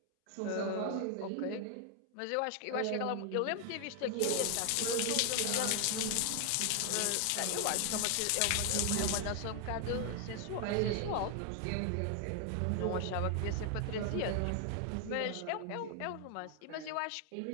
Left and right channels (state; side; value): different; both; correlation 0.00